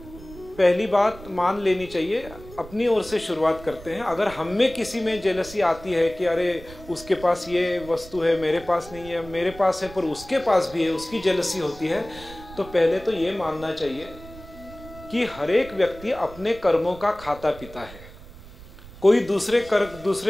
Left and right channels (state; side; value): noise; right; rumble, 18 dB below the sound